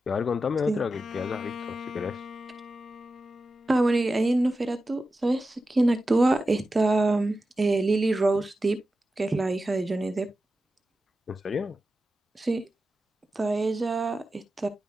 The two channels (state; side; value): normal; both; correlation 0.92